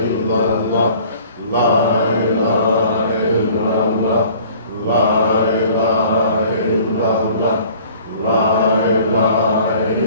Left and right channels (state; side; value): inverted; both; correlation -0.51